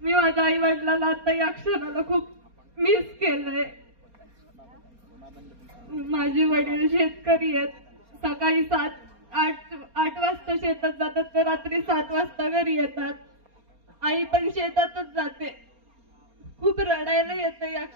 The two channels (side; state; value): left; late; 4.3 ms